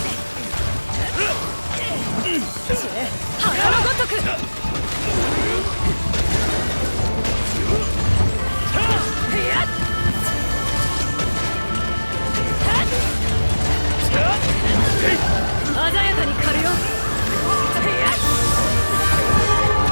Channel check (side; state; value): both; inverted; correlation -1.00